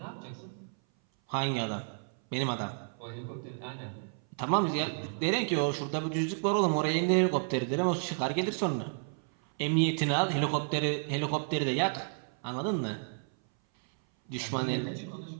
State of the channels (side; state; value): left; silent; 57 dB below the other